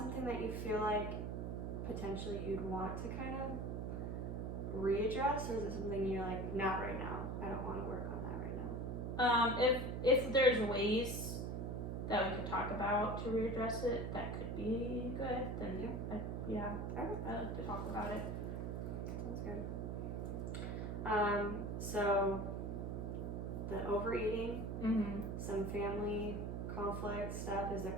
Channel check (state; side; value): noise; right; hum, 3 dB below the sound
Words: that you feel like potentially you'd want to kind of readdress, or is it something you're like, not right now, I don't want to work on that right now? If there's ways that we could talk about to readdress it, that could be good, then I like to talk about it. Sounds good. So the overeating, some family conflict stuff, is